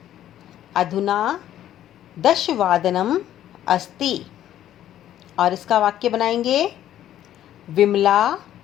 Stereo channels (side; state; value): right; quieter; 11.9 dB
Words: अधुना दशवादनम अस्ति, और इसका वाक्य बनाएंगे विमला